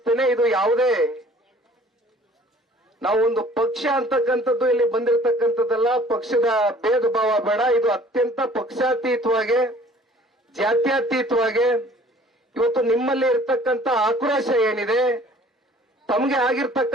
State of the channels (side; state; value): both; normal; correlation 0.52